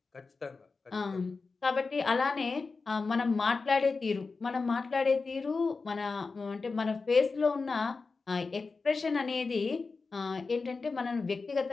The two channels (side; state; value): right; quieter; 4.2 dB